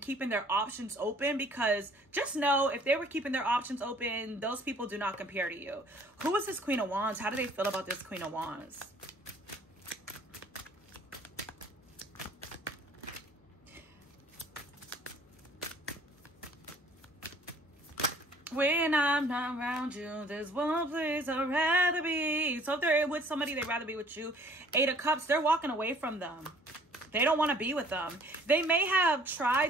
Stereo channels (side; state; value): both; normal; correlation 0.56